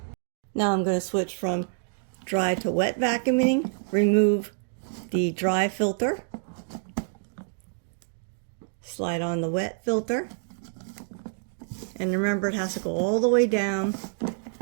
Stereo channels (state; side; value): silent; left; 60 dB below the other